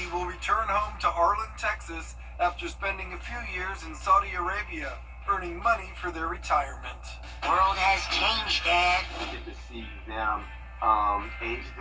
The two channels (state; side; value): identical; both; correlation 1.00